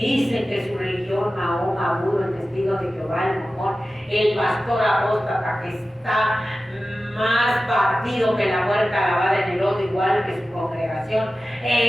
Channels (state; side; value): normal; both; correlation 0.95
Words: que su religión, Mahoma, Buda, el testigo de Jehová, el Mormón, el pastor apóstata, que está más partido que la huerta lavada en el lodo, igual que su congregación,